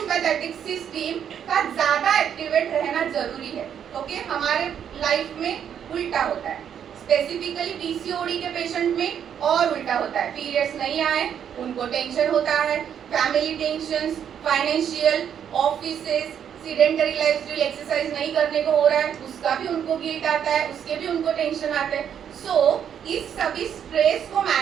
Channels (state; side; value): quieter; left; 8.7 dB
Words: सिस्टम का ज्यादा एक्टिवेट रहना जरूरी है। ओके, हमारे लाइफ में उल्टा होता है, स्पेसिफिकली पीसीओडी के पेशेंट में और उल्टा होता है। पीरियड्स नहीं आए उनको टेंशन होता है, family tensions, financial, offices, sedentary lifestyle, exercise नहीं करने को हो रहा है उसका भी उनको गिल्ट आता है, उसके भी उनको टेंशन आते हैं। सो इस सभी स्ट्रेस को